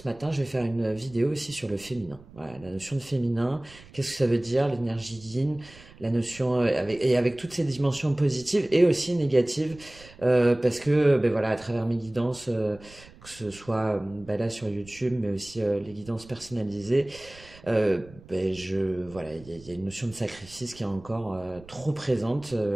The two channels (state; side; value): noise; right; rumble, 22 dB below the sound